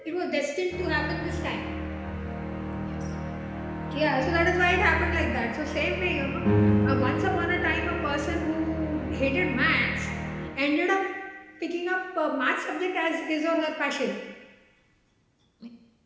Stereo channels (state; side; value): identical; both; correlation 1.00